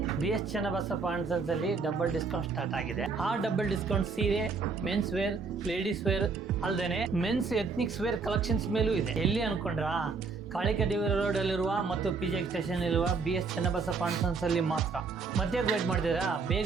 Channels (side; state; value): left; quieter; 4.7 dB